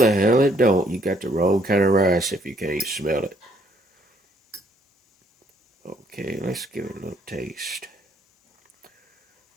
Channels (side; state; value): both; normal; correlation 0.66